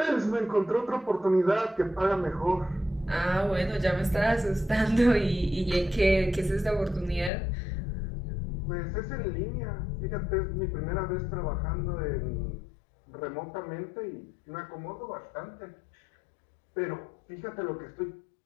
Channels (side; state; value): right; drops out; at 7.3 s